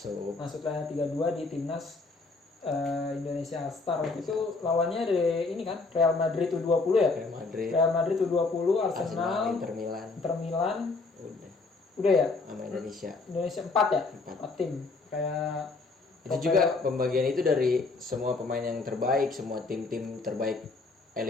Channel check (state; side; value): quieter; right; 3.8 dB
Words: Masuk line up 32 di timnas Indonesia All Star. Waktu itu lawannya dari ini kan Real Madrid U20 ya? Real Madrid U20, Arsenal, Inter Milan. Udah ya? Sama Indonesia 4 ya? 4 tim. Kayak itu juga pembagian itu dari semua pemain yang terbaik, semua tim-tim terbaik